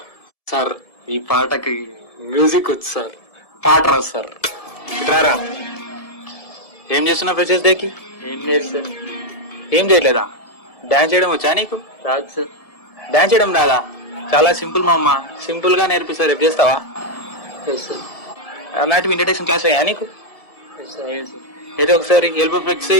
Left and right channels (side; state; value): right; late; 1.7 ms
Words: సార్ ఈ పాటకి మ్యూజిక్ వచ్చు సార్, పాట రాదు సార్. రారా. ఏం చేస్తున్నావు ఫ్రెషర్స్ డేకి? ఏం లేదు సార్. ఏం చేయలేదా? డాన్స్ చేయడం వచ్చా నీకు? రాదు సార్. డాన్స్ చేయడం రాదా? చాలా సింపుల్ మా అమ్మ, సింపుల్ గా నేర్పిస్తారు. రేపు చేస్తావా? అలాంటివి ఇంట్రడక్షన్ క్లాస్ అయ్యా నీకు? ఏదో ఒకసారి ఎల్బో ఫ్లెక్స్